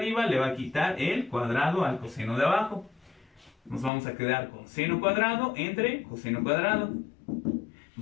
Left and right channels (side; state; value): right; drops out; at 3.9 s